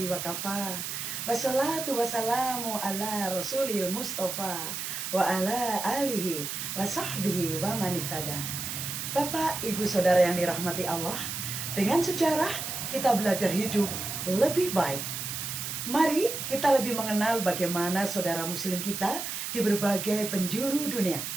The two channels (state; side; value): noise; right; hiss, 5 dB below the sound